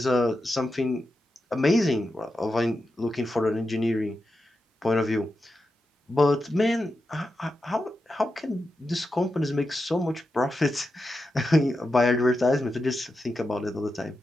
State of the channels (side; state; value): both; normal; correlation 0.89